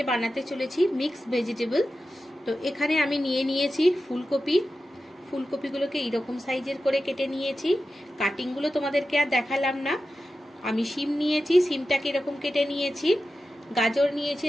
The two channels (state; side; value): normal; both; correlation 0.92